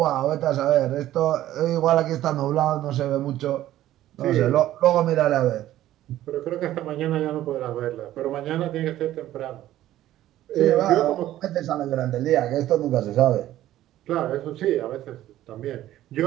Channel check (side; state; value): left; quieter; 13.7 dB